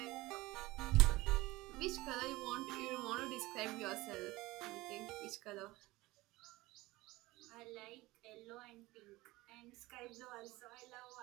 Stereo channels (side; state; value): left; quieter; 20.0 dB